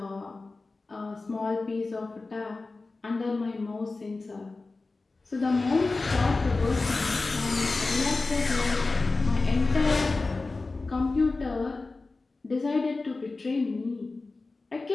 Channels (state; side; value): quieter; right; 3.6 dB